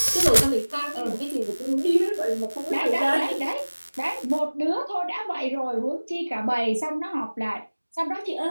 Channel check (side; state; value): both; inverted; correlation -1.00